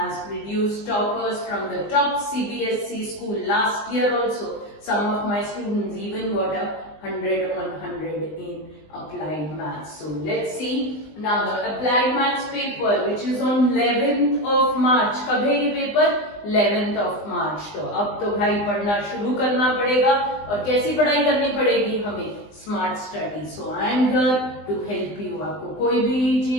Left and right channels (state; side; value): late; right; 20 ms